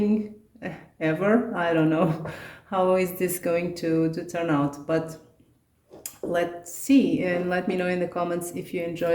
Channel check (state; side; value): identical; both; correlation 1.00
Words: ever. I don't know how is this going to turn out, but let's see, and let me know in the comments if you